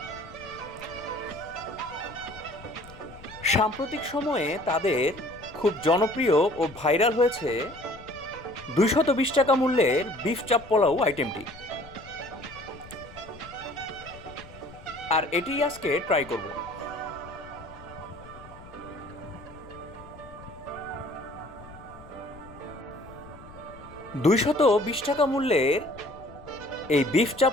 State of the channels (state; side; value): noise; left; rumble, 19 dB below the sound